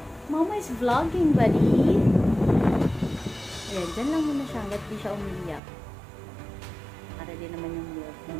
Mama is vlogging, buddy. Ayan, dyan lang muna siya hanggat di siya umiyak. Para din naman yung milk.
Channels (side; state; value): left; drops out; at 5.6 s